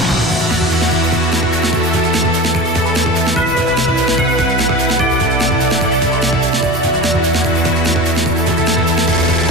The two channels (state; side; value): normal; both; correlation 0.31